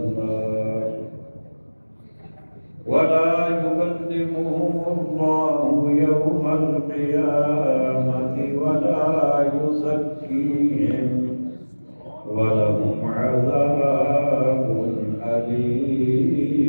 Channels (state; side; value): inverted; both; correlation -1.00